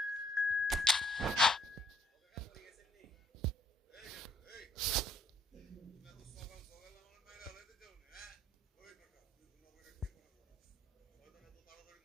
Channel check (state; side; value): normal; both; correlation 0.65